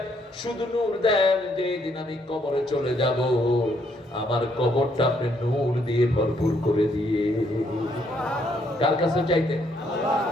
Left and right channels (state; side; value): normal; both; correlation 0.71